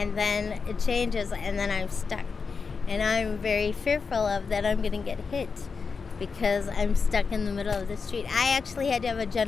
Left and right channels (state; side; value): quieter; right; 5.1 dB